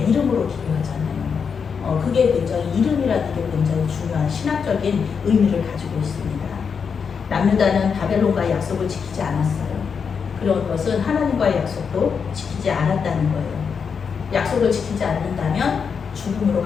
이름으로 기도하잖아요. 그게 굉장히, 이름이라는 게 굉장히 중요한 신학적인 의미를 가지고 있습니다. 남유다는 바벨론과의 약속을 지키지 않았어요. 그런 것은 하나님과의 약속도 지키지 않았다는 거예요. 약속을 지키지 않는다면 죽음으로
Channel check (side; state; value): right; quieter; 6.2 dB